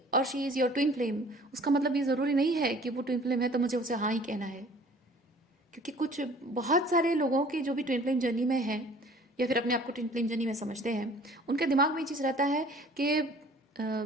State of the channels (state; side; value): normal; both; correlation 0.51